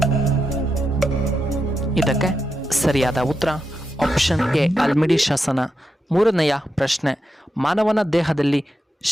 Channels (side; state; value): both; normal; correlation 0.86